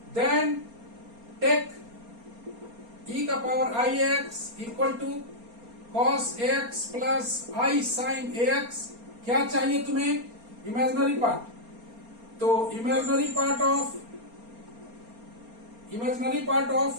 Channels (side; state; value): left; late; 4.3 ms